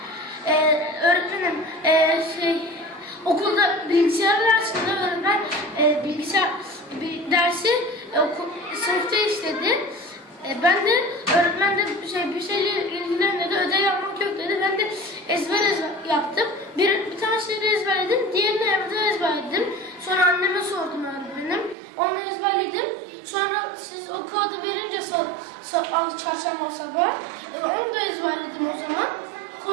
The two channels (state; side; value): drops out; left; at 21.8 s